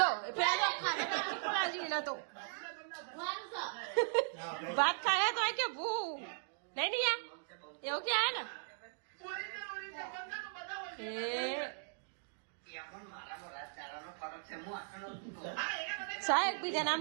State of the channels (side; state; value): left; silent; digital silence